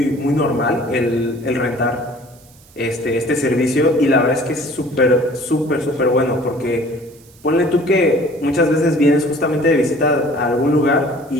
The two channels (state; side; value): noise; right; hiss, 27 dB below the sound